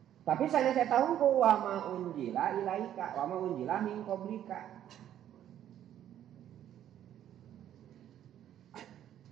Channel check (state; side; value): quieter; left; 11.0 dB